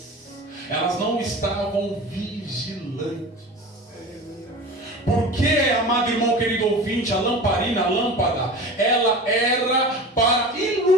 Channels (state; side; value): normal; both; correlation 0.34